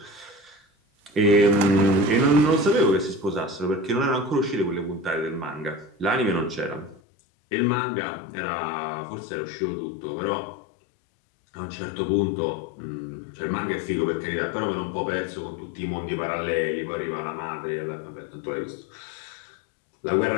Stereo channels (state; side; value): drops out; right; at 7.0 s